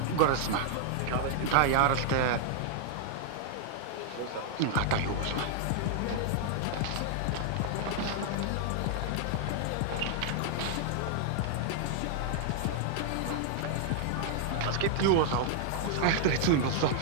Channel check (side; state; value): both; different; correlation 0.00